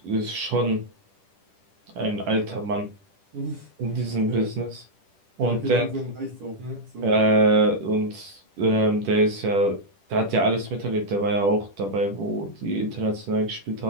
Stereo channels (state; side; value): late; left; 10 ms